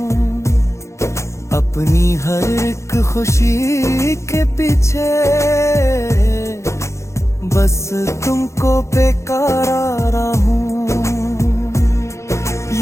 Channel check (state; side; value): late; right; 0.14 ms